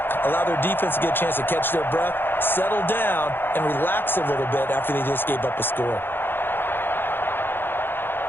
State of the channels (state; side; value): late; right; 0.10 ms